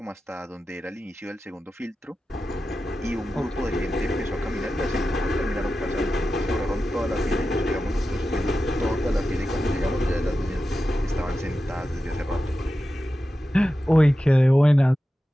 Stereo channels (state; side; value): normal; both; correlation 0.92